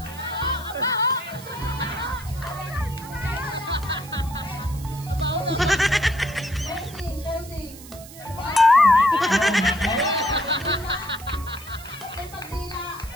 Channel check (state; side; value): noise; right; hiss, 18 dB below the sound